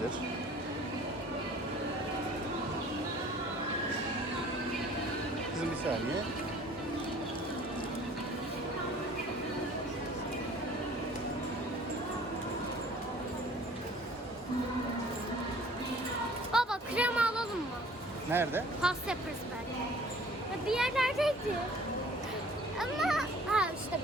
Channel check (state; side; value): normal; both; correlation 0.51